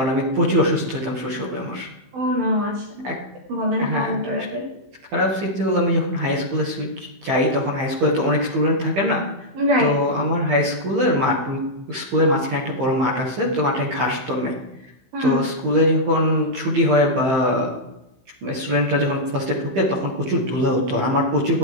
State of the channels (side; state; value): left; late; 15 ms